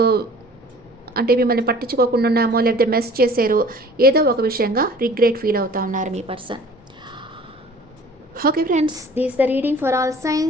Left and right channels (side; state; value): both; normal; correlation 0.48